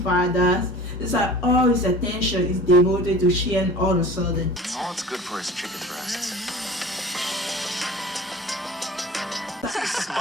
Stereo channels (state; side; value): normal; both; correlation 0.42